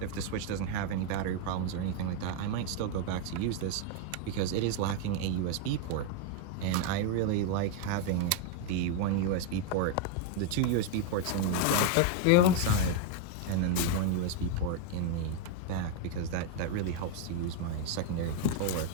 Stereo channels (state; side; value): different; both; correlation 0.01